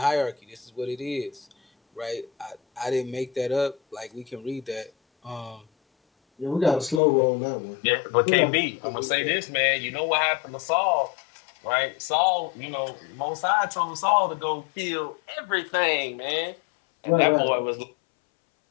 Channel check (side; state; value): right; drops out; at 7.0 s